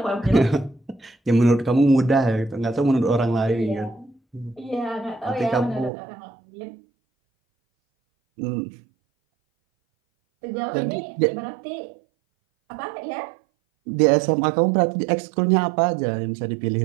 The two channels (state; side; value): drops out; left; at 5.9 s